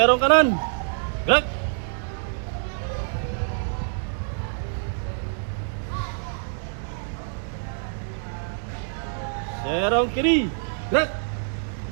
kanan. Gerak. Serong kiri. Gerak.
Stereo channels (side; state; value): left; silent; digital silence